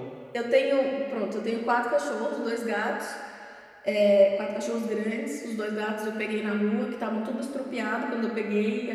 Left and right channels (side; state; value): both; identical; correlation 1.00